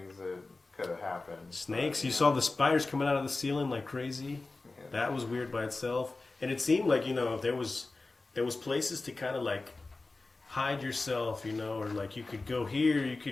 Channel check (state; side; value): quieter; right; 3.4 dB